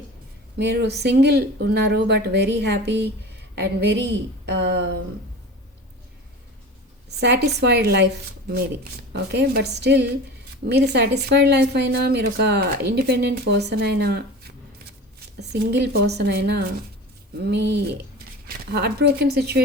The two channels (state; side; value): normal; both; correlation 0.34